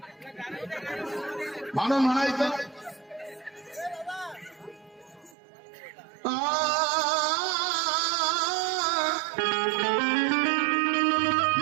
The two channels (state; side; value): drops out; left; at 5.4 s